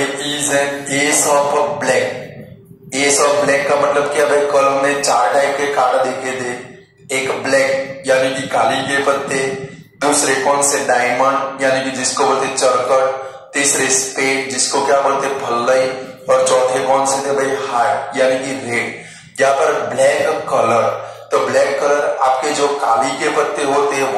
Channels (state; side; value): identical; both; correlation 1.00